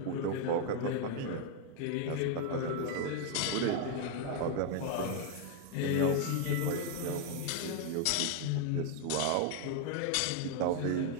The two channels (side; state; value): both; different; correlation 0.00